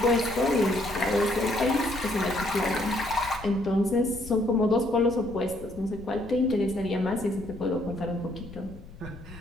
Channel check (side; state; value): left; noise; rumble, 16 dB below the sound